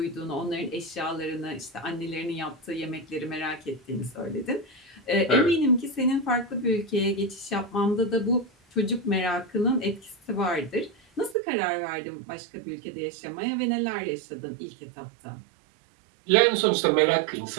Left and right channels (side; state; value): left; drops out; at 11.4 s